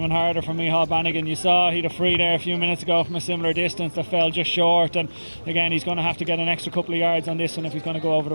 harder for Micheál Bannigan. You saw he'd a free there a few minutes ago from a similar distance that fell just short, and again he's going to have to get an extra couple of yards on this one if he's going to go over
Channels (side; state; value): both; inverted; correlation -1.00